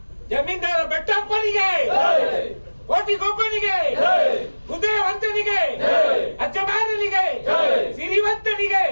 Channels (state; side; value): inverted; both; correlation -1.00